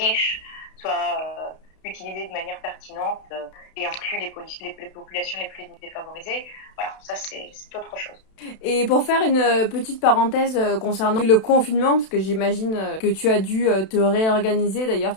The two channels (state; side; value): late; right; 32 ms